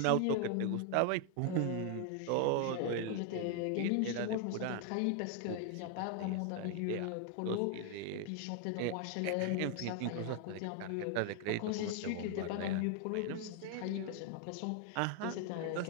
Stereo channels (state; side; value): different; both; correlation 0.00